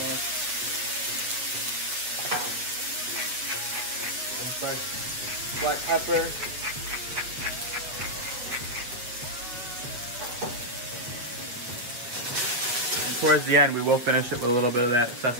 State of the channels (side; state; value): left; late; 8.0 ms